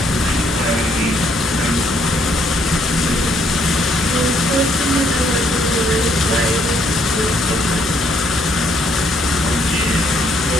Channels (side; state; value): both; normal; correlation 0.69